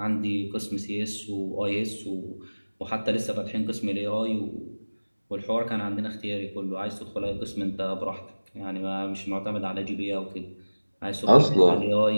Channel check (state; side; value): inverted; both; correlation -1.00